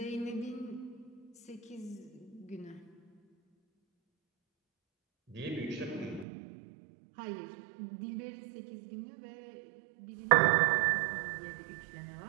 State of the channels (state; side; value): drops out; left; at 6.2 s